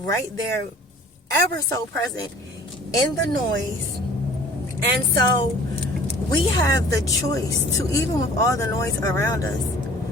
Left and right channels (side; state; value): both; normal; correlation 0.49